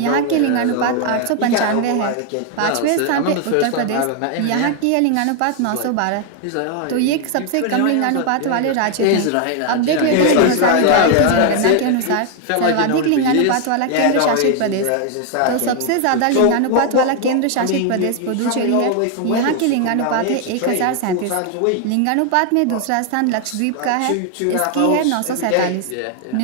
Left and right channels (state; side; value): different; both; correlation 0.01